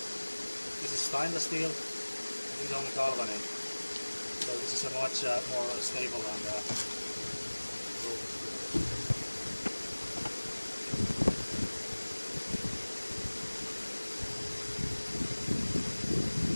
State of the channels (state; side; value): inverted; both; correlation -1.00